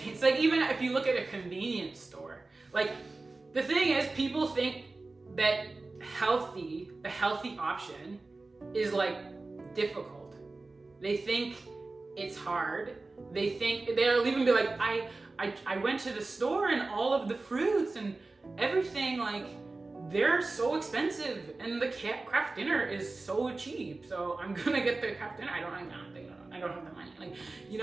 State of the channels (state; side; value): quieter; left; 3.4 dB